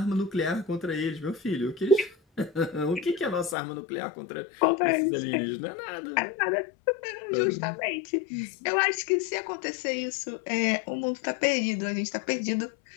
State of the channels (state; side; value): drops out; right; at 3.6 s